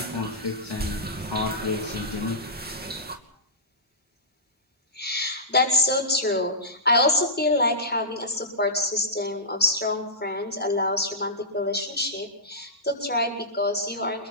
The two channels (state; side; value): normal; both; correlation -0.16